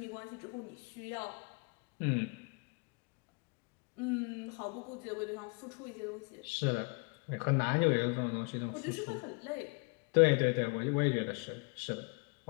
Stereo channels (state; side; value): quieter; right; 32.9 dB